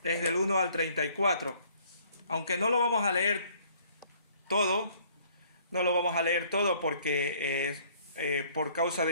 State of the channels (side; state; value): both; inverted; correlation -0.59